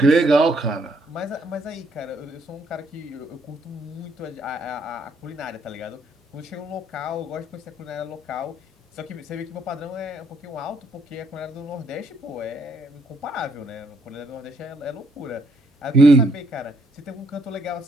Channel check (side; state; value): both; normal; correlation 0.70